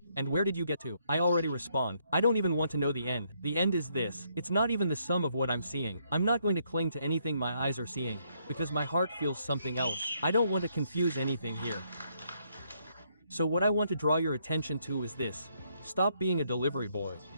and where did you get to? I already respond. I don't even want to know the end. The end is this. It's not even the sum of what I'm seeing. I'm not going to cling to anything my eyes are seeing, because my heart feels something else. I don't want to confuse anything here. So what I want to draw your attention to is this. Stop being a delivery boy.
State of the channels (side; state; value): both; inverted; correlation -0.73